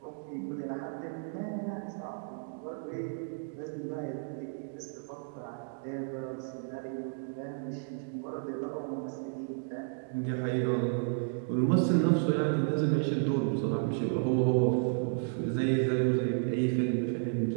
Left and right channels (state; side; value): silent; left; digital silence